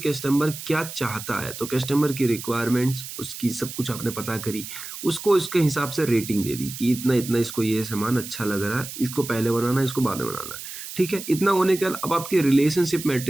क्या चाहता है, तो कस्टमर की रिक्वायरमेंट्स, उसकी सब कुछ आपने पता करी, उसको इसके हिसाब से रेटिंग दे दी कि इतना-इतना इसको ये सामान अच्छा लग रहा है, इसको पहले बनाना है, इसको बाद में बनाना है, ठीक है? इतना होने के बाद अब आपकी रिलेशनशिप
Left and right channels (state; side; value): noise; right; hiss, 10 dB below the sound